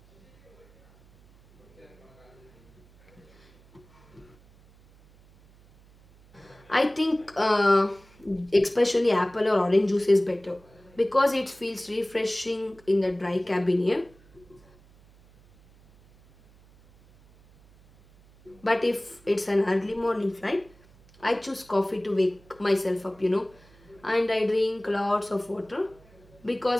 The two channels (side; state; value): right; noise; hum, 27 dB below the sound